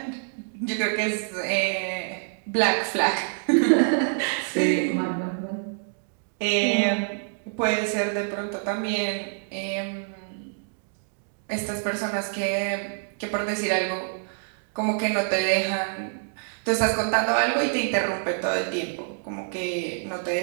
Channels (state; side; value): silent; left; digital silence